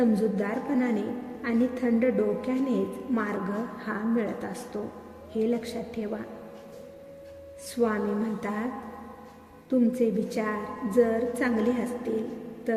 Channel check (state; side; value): identical; both; correlation 1.00